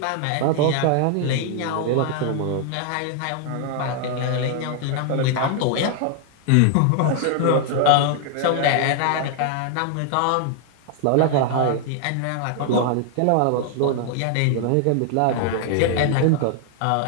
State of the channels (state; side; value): different; both; correlation 0.00